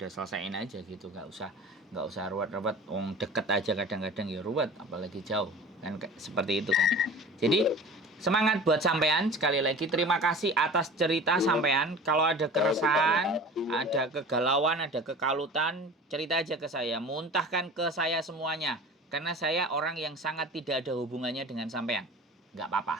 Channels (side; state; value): both; normal; correlation 0.39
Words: selesaiin aja gitu, nggak usah ruwet-ruwet. Deket aja kadang-kadang ya ruwet, apalagi jauh kan seperti itu kan. Jadi semangat buat sampean, sekali lagi terima kasih atas cerita sampean. Kalau ada keresahan, ada kegalauan, ada kekalutan, cerita aja ke saya, muntahkan ke saya semuanya. Karena saya orang yang sangat tidak ada hubungannya dengan sampean. Nggak